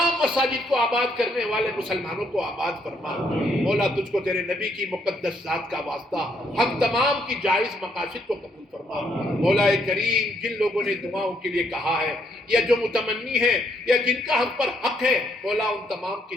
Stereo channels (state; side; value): normal; both; correlation 0.72